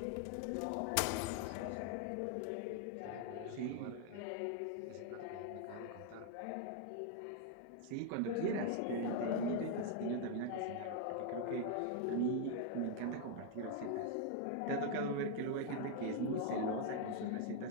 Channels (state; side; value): different; both; correlation 0.00